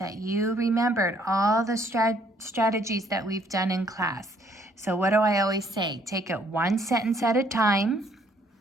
you remembered all the strategies that we've done in class. So what do I always say? Take it one sentence at a time.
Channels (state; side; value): normal; both; correlation 0.65